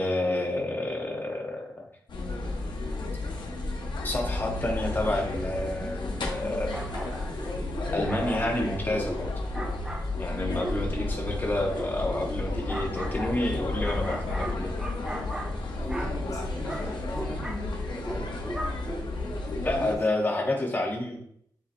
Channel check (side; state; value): both; normal; correlation 0.84